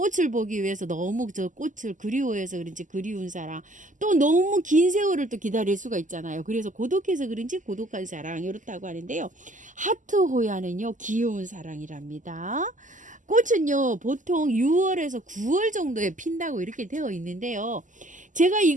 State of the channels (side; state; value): left; late; 0.37 ms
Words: 보기 위해서 너무 저 꽃을 그리워해서 그런지 그리운 사랑, 또 너무 긴 세월을 또 기다릴 수가 있잖아요. 그래서 고독해서 그런지 고독한 사랑 이렇다고 하는데요. 하트 호야는요 귀여운 사랑이랍니다. 꽃은요 보통 6월에서 9월 정도에 핀다고 이렇게 되어 있는데요. 제가